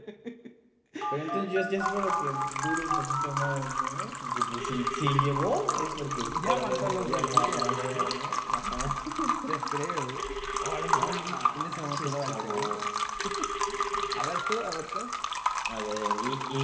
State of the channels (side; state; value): both; identical; correlation 1.00